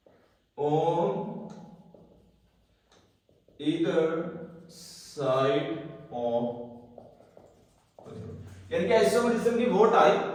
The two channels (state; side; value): identical; both; correlation 1.00